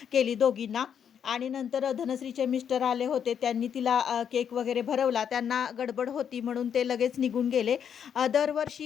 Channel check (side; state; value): right; quieter; 8.1 dB